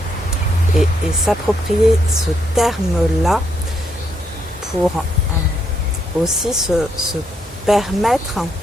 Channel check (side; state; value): both; normal; correlation 0.75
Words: et s'approprier ce terme-là pour aussi se permettre